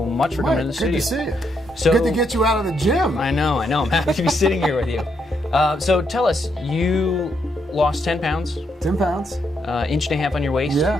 much for coming to the studio. Good to see you. Good to get you out of the gym. I know. I'm happy to be sitting here with you. So tell us, you lost 10 pounds. 10 pounds. Inch and a half on your waist.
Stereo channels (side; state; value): both; normal; correlation 0.77